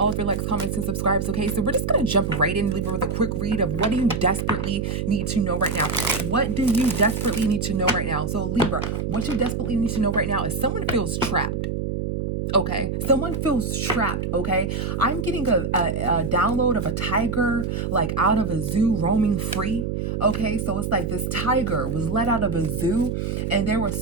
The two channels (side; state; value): right; noise; hum, 2 dB below the sound